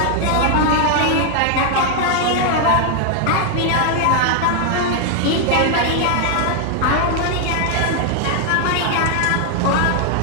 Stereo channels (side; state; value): both; different; correlation 0.00